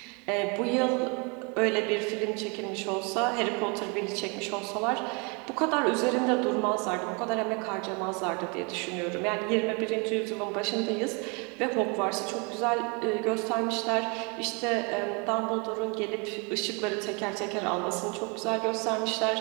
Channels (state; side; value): quieter; left; 32.1 dB